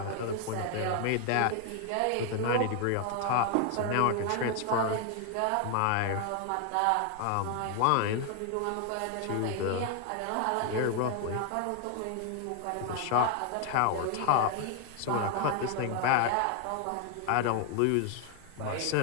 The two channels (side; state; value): both; different; correlation 0.00